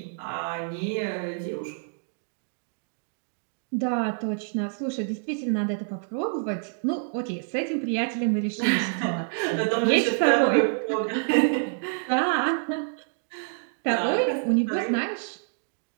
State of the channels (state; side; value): silent; left; digital silence